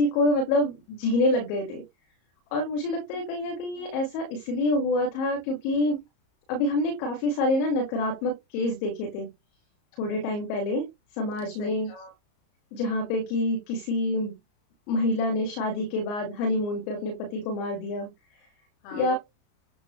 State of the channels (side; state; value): right; late; 34 ms